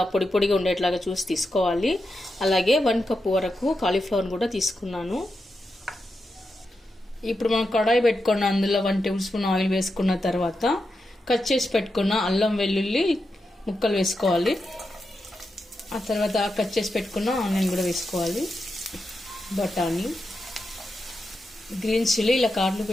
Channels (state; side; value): normal; both; correlation 0.88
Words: పొడి పొడిగా ఉండేట్లాగా చూసి తీసుకోవాలి. అలాగే 1 కప్ వరకు కాలీఫ్లవర్ కూడా తీసుకున్నాను. ఇప్పుడు మనం కడాయి పెట్టుకున్న అందులో 1 టేబుల్ స్పూన్ ఆయిల్ వేసుకున్న తర్వాత కట్ చేసి పెట్టుకున్న అల్లం వెల్లుల్లి ముక్కలు వేసుకోవాలి. ఆ తర్వాత కట్ చేసి పెట్టుకున్న ఆనియన్ కూడా వేసుకోవాలి. బఠానీ, గ్రీన్ చిల్లీ ఇలా కార్లు